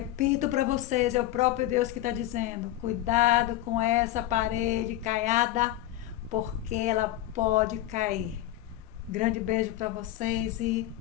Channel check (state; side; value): quieter; right; 14.3 dB